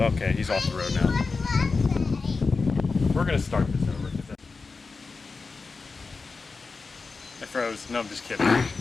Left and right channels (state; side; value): quieter; right; 4.3 dB